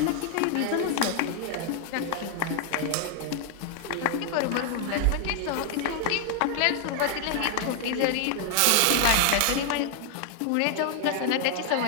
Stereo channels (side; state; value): both; different; correlation 0.00